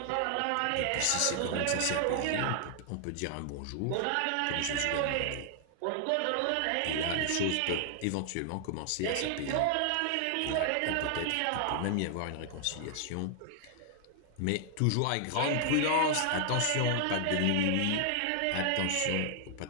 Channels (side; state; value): both; different; correlation 0.00